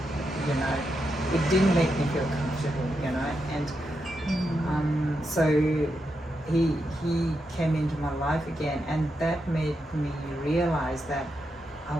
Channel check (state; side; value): normal; both; correlation 0.85